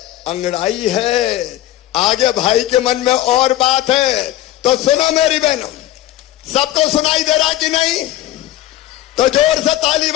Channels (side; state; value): right; quieter; 14.4 dB